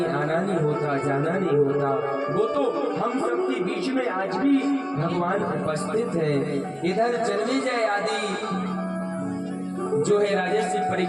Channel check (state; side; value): identical; both; correlation 1.00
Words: आना नहीं होता, जाना नहीं होता। वो तो हम सबके बीच में आज भी भगवान उपस्थित हैं। इधर जन्मेजय आदि जो है राजर्षि